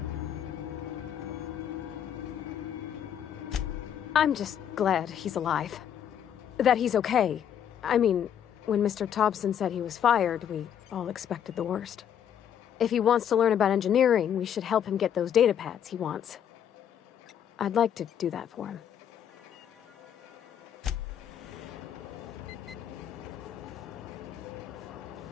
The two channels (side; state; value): right; quieter; 9.3 dB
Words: I'm just glad he's alive. That he's okay. I mean, when Mr. Thompson said he was fired, we all expected the worst. If he wants to learn about engineering, we should help him get those data pads he wants. I'd like to do that for him.